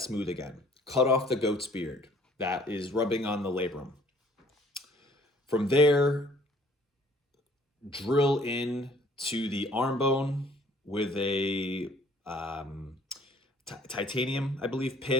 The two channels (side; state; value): both; normal; correlation 0.57